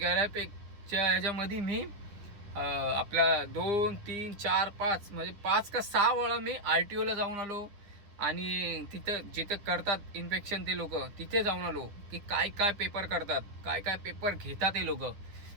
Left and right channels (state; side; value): late; left; 9.9 ms